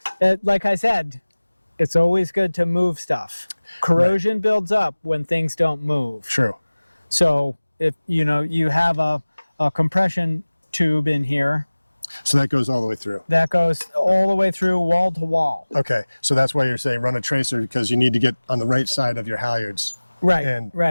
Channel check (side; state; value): both; inverted; correlation -1.00